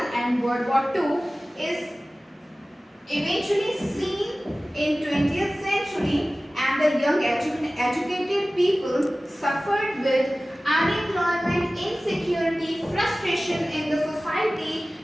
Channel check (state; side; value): normal; both; correlation 0.97